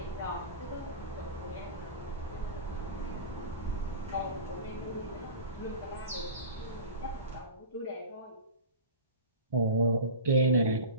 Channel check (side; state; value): both; inverted; correlation -0.33